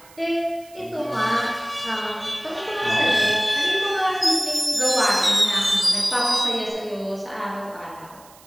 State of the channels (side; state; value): right; noise; hiss, 24 dB below the sound